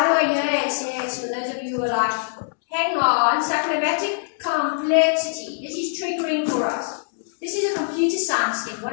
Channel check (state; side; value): silent; right; digital silence